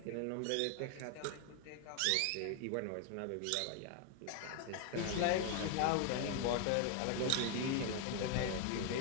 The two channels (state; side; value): different; both; correlation 0.00